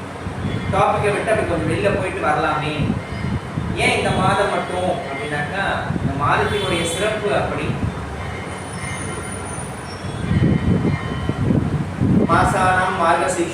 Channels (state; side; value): identical; both; correlation 1.00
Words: டாபிக்கை விட்டு அப்படி கொஞ்சம் வெளில போயிட்டு வரலாமே, ஏன் இந்த மாதம் மட்டும் அப்படின்னாக்கா இந்த மாதத்தினுடைய சிறப்பு அப்படி. மாசானாம்